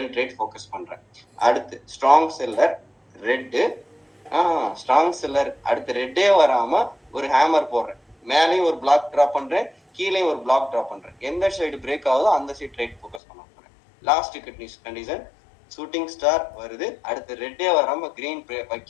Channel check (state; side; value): drops out; right; at 13.2 s